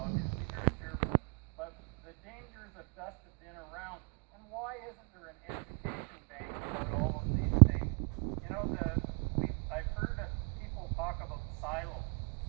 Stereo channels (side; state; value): left; quieter; 39.5 dB